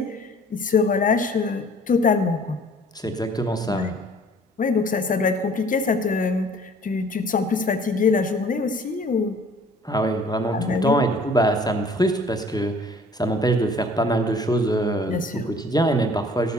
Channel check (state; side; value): normal; both; correlation 0.53